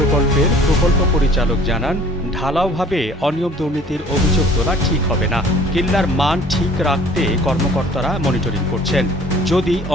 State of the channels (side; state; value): both; normal; correlation 0.52